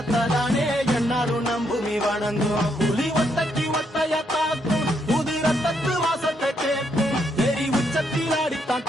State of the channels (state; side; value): normal; both; correlation 0.76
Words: தானே என்னாலும் நம்புமி வணங்கும் புலி ஒத்தைக்கு ஒத்தையா தாக்கும் புது ரத்தத்து வாசத்தை கேட்கும் வெறி உச்சத்தில் அடித்தான்